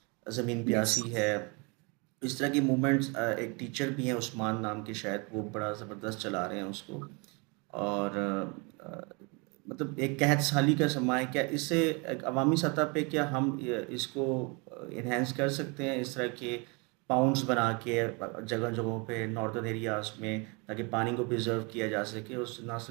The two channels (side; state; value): left; quieter; 30.6 dB